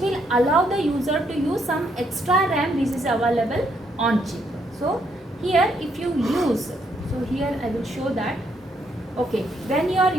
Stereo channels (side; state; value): both; normal; correlation 0.74